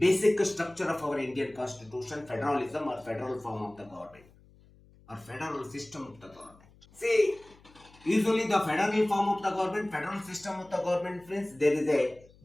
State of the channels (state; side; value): noise; left; hum, 27 dB below the sound